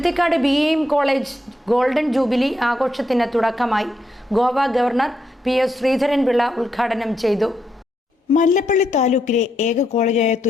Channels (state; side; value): normal; both; correlation 0.80